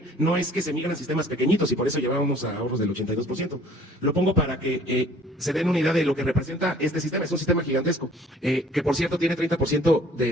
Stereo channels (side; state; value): both; normal; correlation 0.54